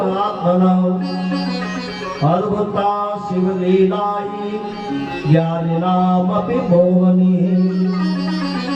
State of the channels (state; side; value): identical; both; correlation 1.00